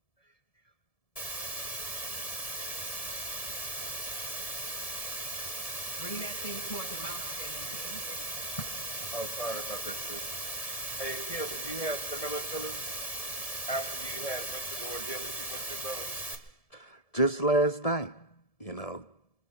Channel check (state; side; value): late; right; 1.7 ms